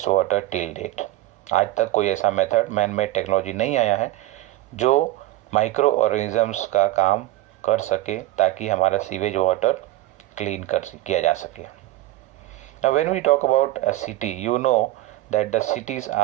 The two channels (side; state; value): left; quieter; 16.3 dB